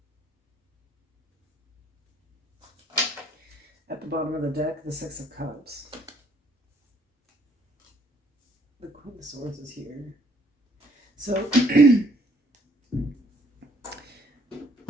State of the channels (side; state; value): both; normal; correlation 0.64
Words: At the bottom of the deck, the Six of Cups. The Queen of Swords is here. So